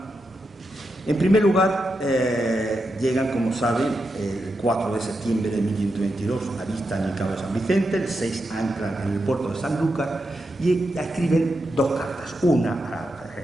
En primer lugar, llegan, como saben, el 4 de septiembre de 1522, avistan el Cabo de San Vicente, el 6 anclan en el puerto de Sanlúcar y escriben 2 cartas, una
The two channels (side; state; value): both; normal; correlation 0.86